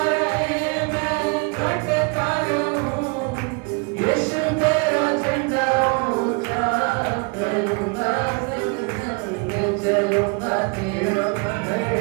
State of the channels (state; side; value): quieter; left; 32.9 dB